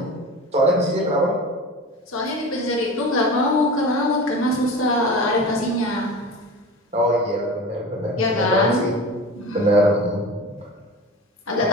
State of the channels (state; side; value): normal; both; correlation 0.33